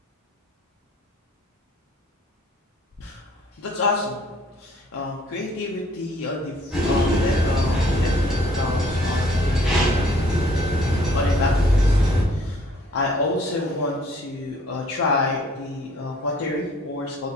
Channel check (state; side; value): normal; both; correlation 0.59